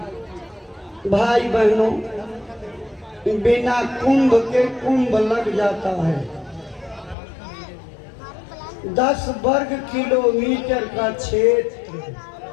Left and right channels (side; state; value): right; drops out; at 7.2 s